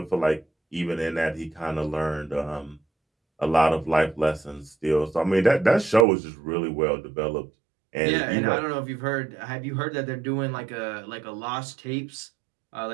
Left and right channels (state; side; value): drops out; left; at 6.1 s